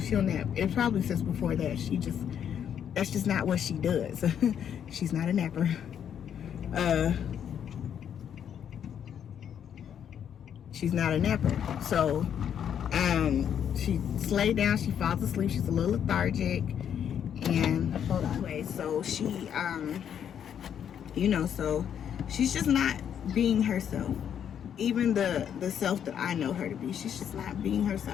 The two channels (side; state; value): right; quieter; 8.8 dB